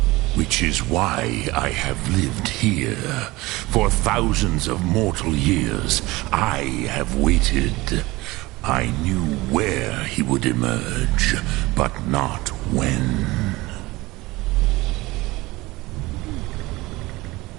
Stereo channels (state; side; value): quieter; left; 20.7 dB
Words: Which is why I have lived here. For thousands of mortal years, I have waited. I knew where he would emerge, but not when.